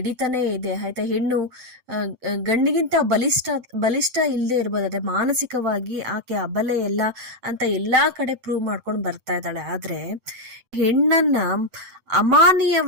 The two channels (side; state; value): left; late; 7.9 ms